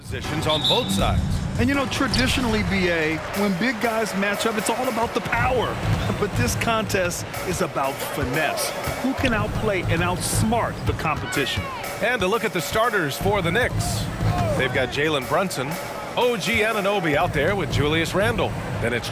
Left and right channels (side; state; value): both; identical; correlation 1.00